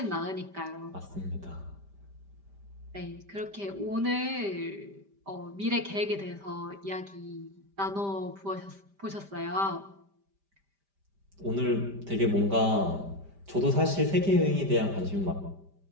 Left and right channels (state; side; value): late; left; 5.1 ms